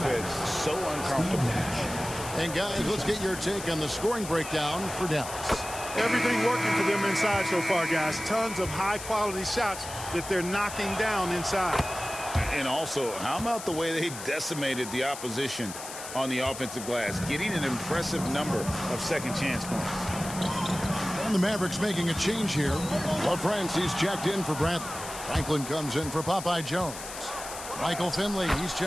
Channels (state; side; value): noise; left; hiss, 10 dB below the sound